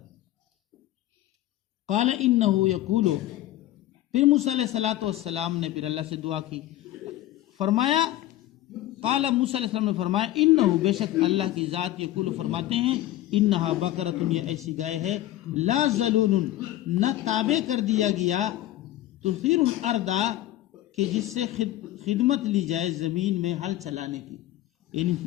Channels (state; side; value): quieter; right; 14.5 dB